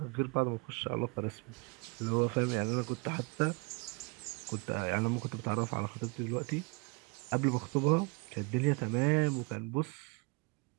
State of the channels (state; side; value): quieter; left; 29.8 dB